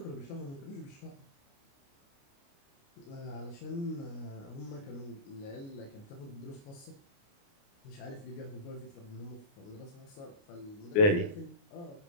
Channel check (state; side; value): late; right; 29 ms